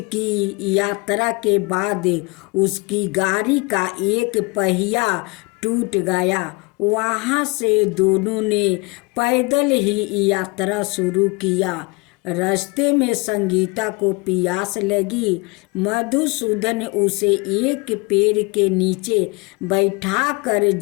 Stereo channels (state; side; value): quieter; right; 27.7 dB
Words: की यात्रा के बाद उसकी गाड़ी का एक पहिया टूट गया। वहाँ से दोनों ने पैदल ही यात्रा शुरू किया। रास्ते में संगीता को प्यास लगी। मधुसूदन उसे एक पेड़ के नीचे बैठाकर